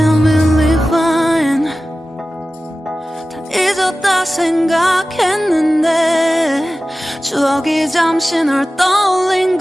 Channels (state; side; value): normal; both; correlation 0.95